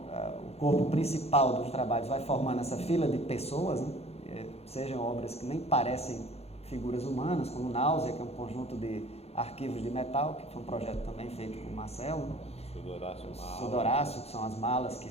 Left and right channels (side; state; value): right; late; 0.30 ms